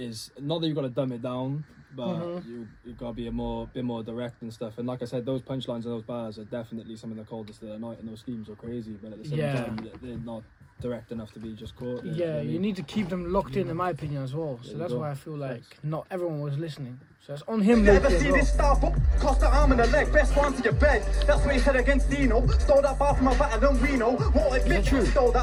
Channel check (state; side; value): identical; both; correlation 1.00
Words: not that you gotta dumb it down, but you gotta be bit more direct and stuff. And like I said, those punchlines and those bars are definitely some of the coldest of the night, and those schemes are crazy. But at the same time, they're not direct enough to be just caught. You know what I You mean? need to keep them locked in my opinion, as well. So There you that's go. why I feel like not everyone was listening. So it's on him. You ever lately as see well. this star book? Cost the arm and the leg, best one to your bed. That's what he said against Dino. Stole that bar from a battle and Reno. Won't admit true? stole